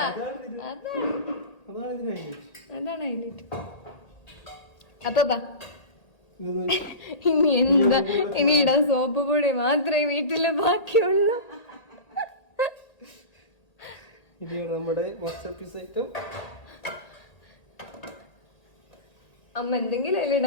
അതാണ് ഹൈലൈറ്റ്. അപ്പൊ ഇനി എന്താ, ഇനി ഇടാൻ സോപ്പ് പൊടി മാത്രമേ വീട്ടില് ബാക്കിയുള്ളൂ. നമ്മുടെ മാസ്റ്റർ പീസ് ഐറ്റം. അമ്മ എന്തെങ്കിലും അതിൽ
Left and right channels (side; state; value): right; late; 1.8 ms